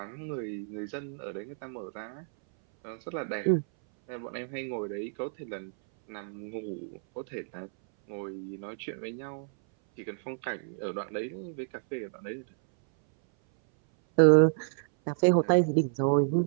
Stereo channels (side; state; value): left; silent; 58 dB below the other